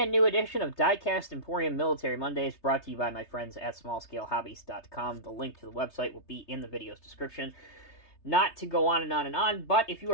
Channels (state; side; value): late; right; 3.3 ms